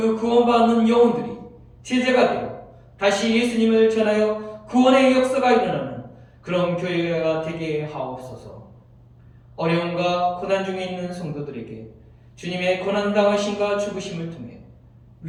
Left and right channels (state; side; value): identical; both; correlation 1.00